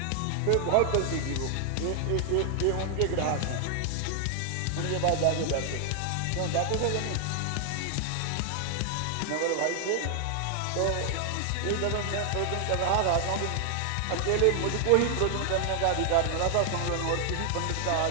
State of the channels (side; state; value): both; different; correlation 0.00